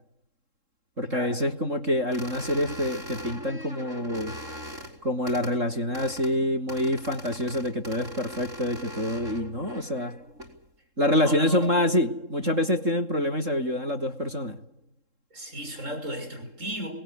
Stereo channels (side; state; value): left; late; 3.7 ms